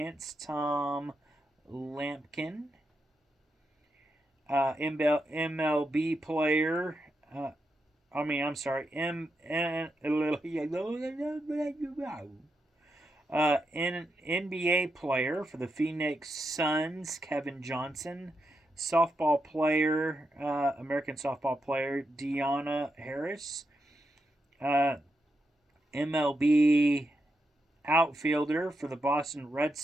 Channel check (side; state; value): both; normal; correlation 0.85